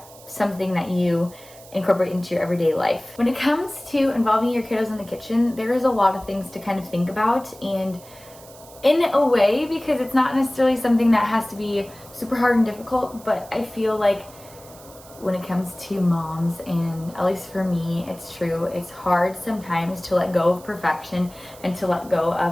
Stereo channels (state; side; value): noise; right; hiss, 21 dB below the sound